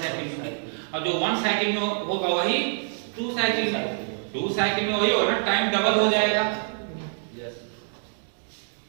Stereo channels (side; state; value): left; silent; 61 dB below the other